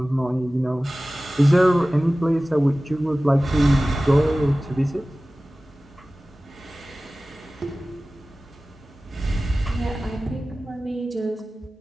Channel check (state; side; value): normal; both; correlation 0.97